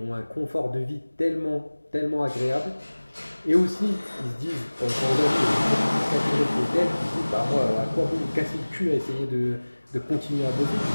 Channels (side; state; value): both; inverted; correlation -1.00